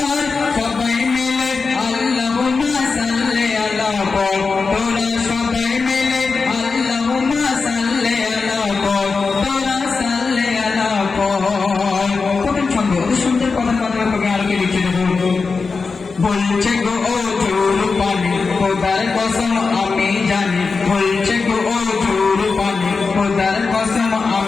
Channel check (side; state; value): right; quieter; 4.6 dB